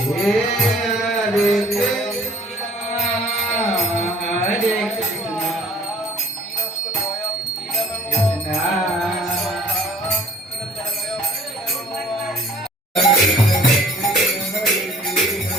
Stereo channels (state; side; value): normal; both; correlation 0.54